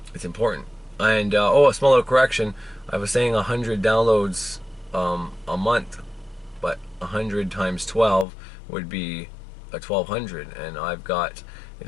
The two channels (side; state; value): right; drops out; at 8.2 s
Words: And oh, a small little correction. I was saying 100 downloads a month, but 100 times 12 would be a 1,200, and I've got,